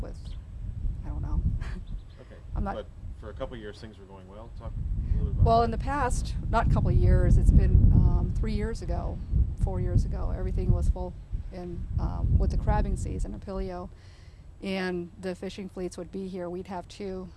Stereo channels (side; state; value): both; identical; correlation 1.00